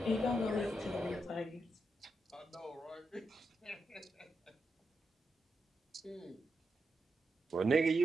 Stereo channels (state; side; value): normal; both; correlation 0.85